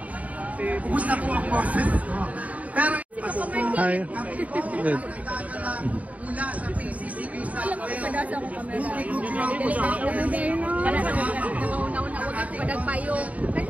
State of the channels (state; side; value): late; left; 0.070 ms